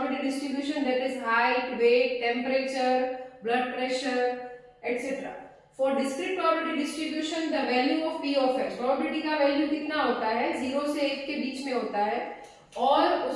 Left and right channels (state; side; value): identical; both; correlation 1.00